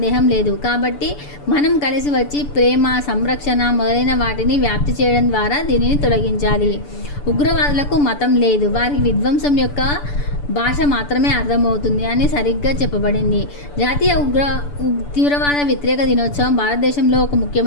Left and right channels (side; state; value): right; late; 6.9 ms